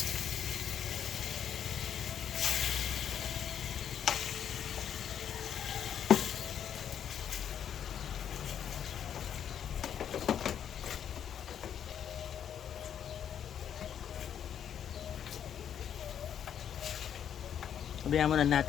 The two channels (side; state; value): right; quieter; 9.0 dB